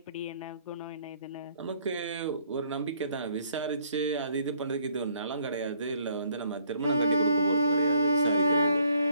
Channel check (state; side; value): inverted; both; correlation -0.64